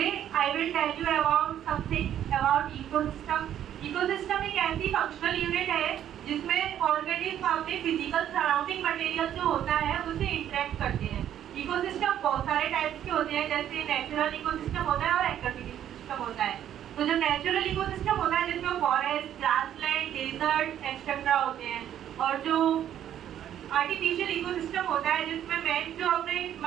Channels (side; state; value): left; quieter; 10.7 dB